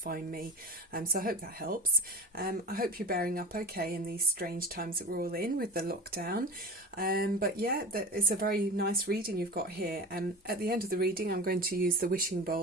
me, so I hope that helps. I hope you're bearing up okay in these strange times that we're all in with the lockdown. But yeah, it's a very nice reading you've got here. At the end of the reading, I'm going to use the wishing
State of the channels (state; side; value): normal; both; correlation 0.30